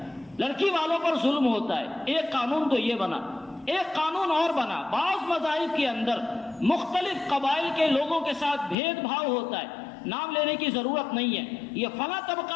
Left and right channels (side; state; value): right; drops out; at 8.8 s